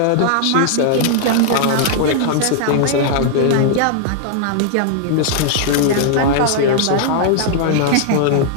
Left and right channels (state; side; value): different; both; correlation -0.01